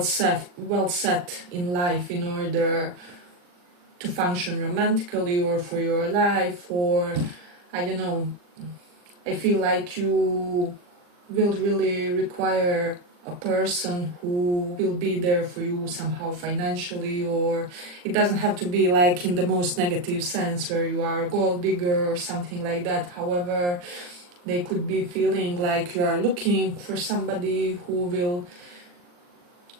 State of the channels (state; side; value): late; left; 40 ms